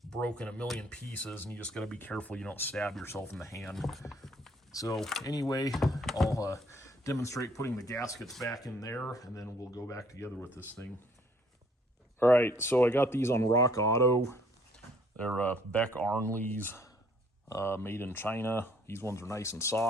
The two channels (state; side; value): normal; both; correlation 0.62